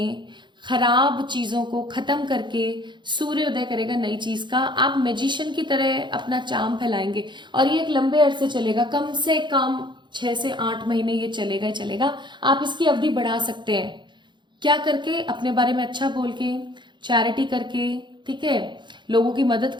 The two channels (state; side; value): late; left; 0.22 ms